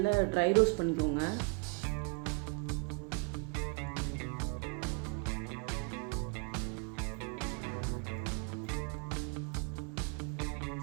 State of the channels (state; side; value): quieter; left; 32.9 dB